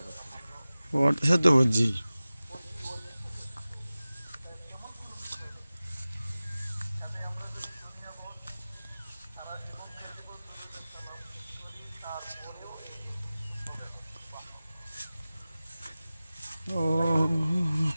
ওর সাথে তো বুঝছি ও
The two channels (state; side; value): inverted; both; correlation -0.97